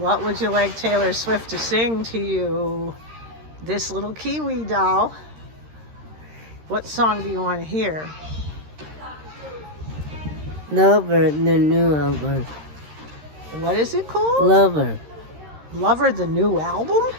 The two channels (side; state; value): left; late; 13 ms